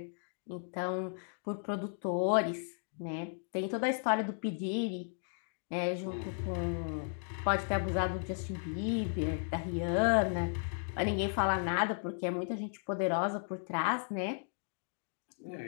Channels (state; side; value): silent; right; digital silence